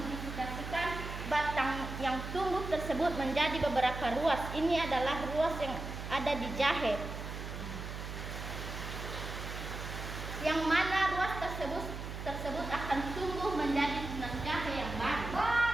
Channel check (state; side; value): noise; right; hum, 7 dB below the sound